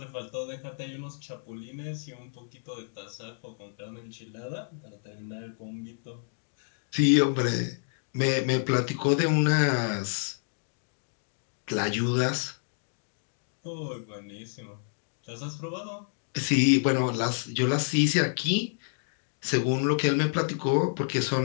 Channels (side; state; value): right; silent; digital silence